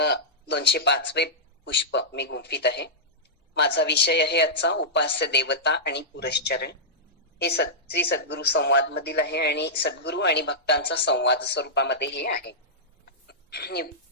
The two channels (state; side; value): normal; both; correlation -0.12